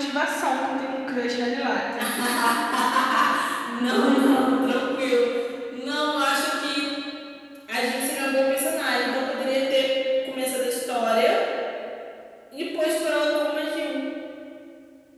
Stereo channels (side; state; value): both; identical; correlation 1.00